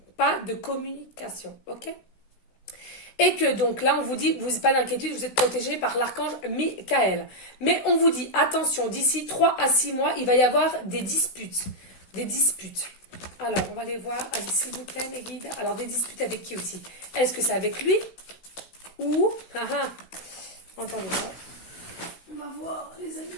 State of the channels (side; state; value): right; late; 16 ms